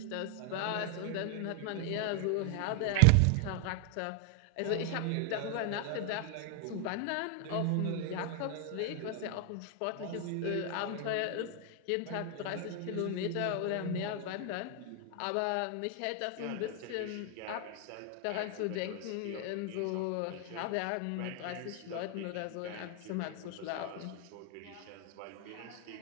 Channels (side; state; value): both; different; correlation 0.00